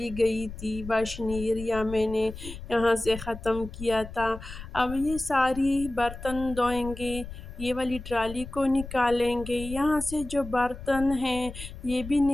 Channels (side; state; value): left; noise; rumble, 12 dB below the sound